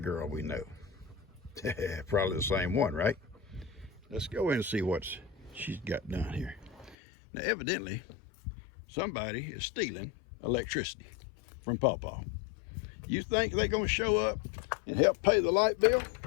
we know. Probably the same one, right? Let's go in and see what she's got done here. Now, evidently, somebody is stealing electricity from Pawpaw. You think they're going to show up and help pay the light bill?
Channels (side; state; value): right; drops out; at 7.0 s